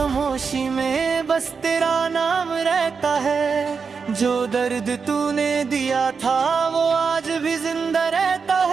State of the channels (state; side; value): quieter; left; 5.5 dB